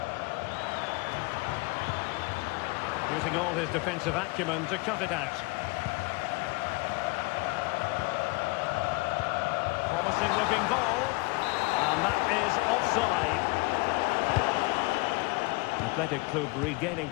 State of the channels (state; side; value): quieter; right; 25.6 dB